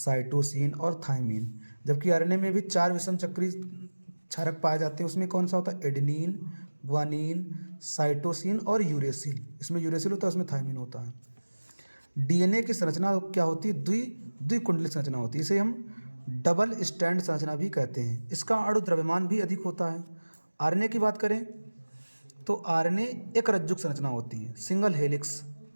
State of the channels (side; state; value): both; inverted; correlation -1.00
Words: और थायमिन। जबकि आरएनए में भी 4 विषम चक्री क्षारक पाए जाते हैं। उसमें कौन सा होता है? एडेनिन, ग्वानिन, साइटोसिन और यूरेसिल। इसमें यूरेसिल होता है, उसमें थायमिन होता है। डीएनए की संरचना क्या होती है? द्विकुंडलित संरचना होती है, इसे हम डबल स्टैंड संरचना भी कहते हैं। इसका अणु द्रव्यमान भी अधिक होता है। आरएनए की बात करें तो आरएनए एक रज्जुक संरचना होती है, सिंगल हेलिक्स